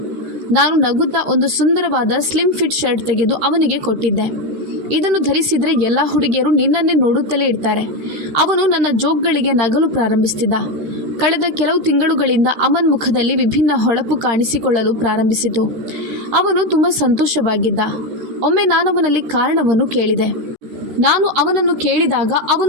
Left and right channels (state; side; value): late; left; 13 ms